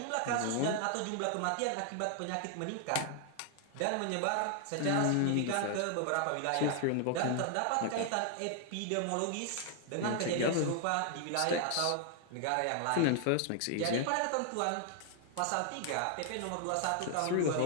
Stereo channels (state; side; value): different; both; correlation 0.00